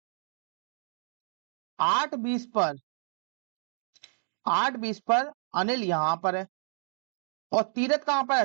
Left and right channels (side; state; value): left; silent; digital silence